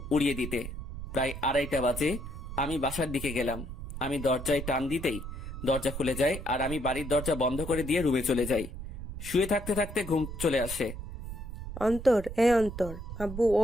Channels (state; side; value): noise; right; rumble, 9 dB below the sound